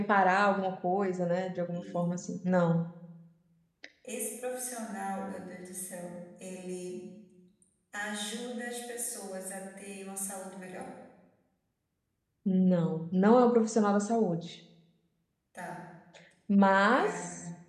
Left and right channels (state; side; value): identical; both; correlation 1.00